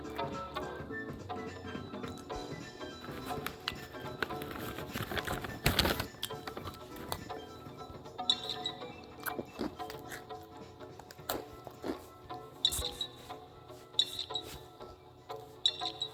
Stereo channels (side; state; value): both; identical; correlation 1.00